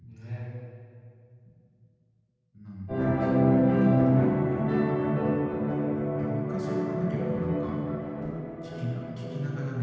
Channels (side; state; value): both; identical; correlation 1.00